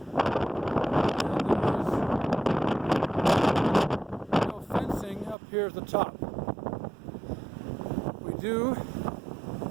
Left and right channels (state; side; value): drops out; left; at 5.4 s